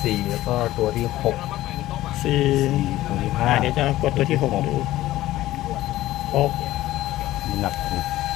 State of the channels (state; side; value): quieter; right; 15.5 dB